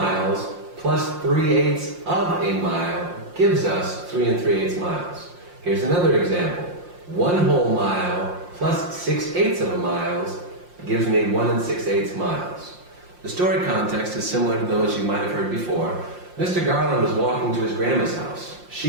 plus 3/8 of a mile gives us 3 3/8 miles. Here's another example. 1 whole mile plus 6/8 of a mile gives me 1 6/8 miles. The story context is similar to those you might have heard before. Mr. Garland was walking to his grandma's house.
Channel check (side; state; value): left; late; 5.7 ms